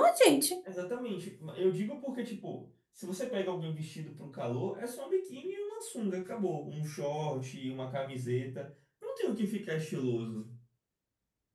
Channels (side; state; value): both; identical; correlation 1.00